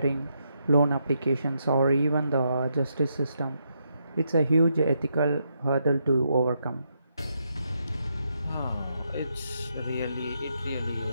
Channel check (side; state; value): both; inverted; correlation -0.80